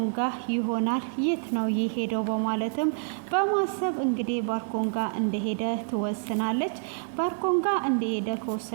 ጋር ይሆናል። የት ነው የሄደው በማለትም በማሰብ እንግዲህ ባርኮን ጋር እንደሄደ ትወስናለች። ባርኮን ጋር እንደሄደ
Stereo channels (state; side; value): silent; left; 60 dB below the other